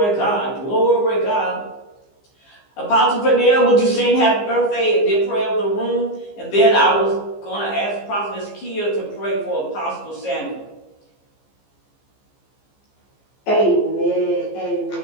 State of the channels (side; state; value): right; late; 15 ms